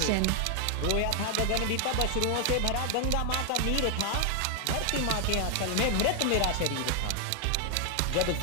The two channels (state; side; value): different; both; correlation 0.00